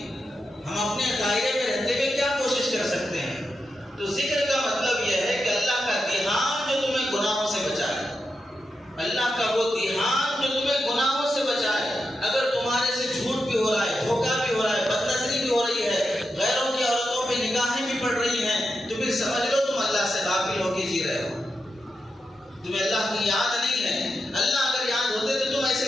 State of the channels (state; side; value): normal; both; correlation 0.87